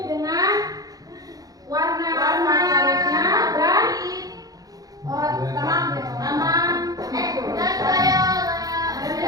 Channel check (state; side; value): late; left; 0.18 ms